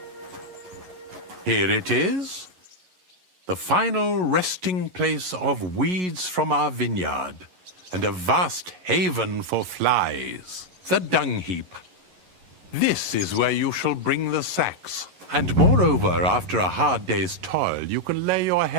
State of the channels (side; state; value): left; late; 11 ms